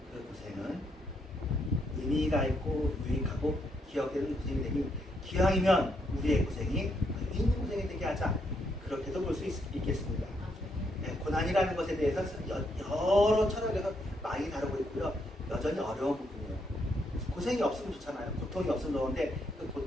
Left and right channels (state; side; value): normal; both; correlation 0.76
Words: 그 고생은 의미가 있고 유익하고 기억되는 고생이 되니 기왕이면 우리의 고생이 의미 있는 고생이 되게 하자. 그렇게도 볼 수 있겠습니다. 네, 고난이라는 것에 대해서 여러 철학에서 많이 다루고 있고요. 여전히 어려운 부분이에요. 고생이 없으면 좋잖아요. 고통이 없으면 좋은데 그